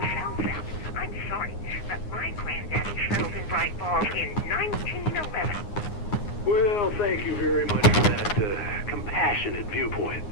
thank you very much for that compassionate viewpoint,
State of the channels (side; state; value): right; late; 9.7 ms